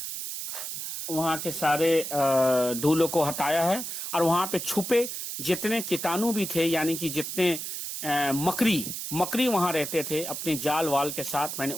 के सारे धूलों को हटाया है और वहां पे छुपे जितने कीटाणु भी थे यानी कि जितने मकड़ी वहां रहते थे अपने जाल वाल के साथ मैंने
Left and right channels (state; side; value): noise; right; hiss, 6 dB below the sound